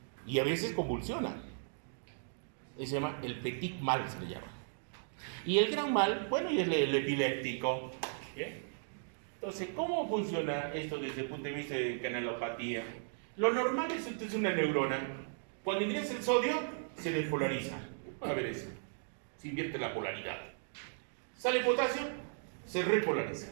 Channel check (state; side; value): silent; left; digital silence